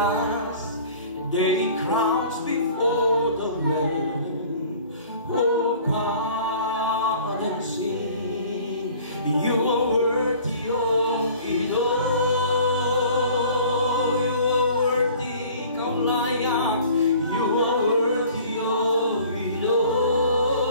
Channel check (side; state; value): both; inverted; correlation -0.48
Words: their crowns before the Lamb. Oh God, and sing, you are worthy of it all. You are worthy, come layak. You are worthy of it all.